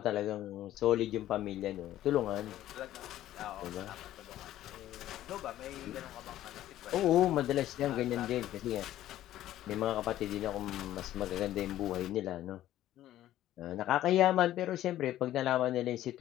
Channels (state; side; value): quieter; right; 13.4 dB